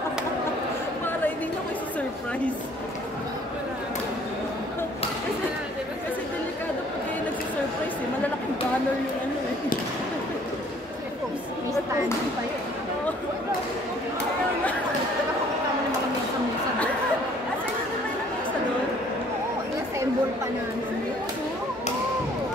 Para hindi na ko isi-surprise. surprise. Kasi delikado pag kayo nagsisurprise eh. Malalaking banner yung ano eh. May standing pa yun. Nakakita mo yung mga mesa-mesa doon. Asa yun na may mesa doon? Oo, i-assemble pa namin.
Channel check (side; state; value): both; normal; correlation 0.58